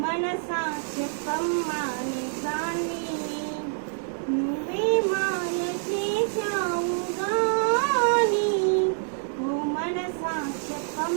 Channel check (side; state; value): left; silent; digital silence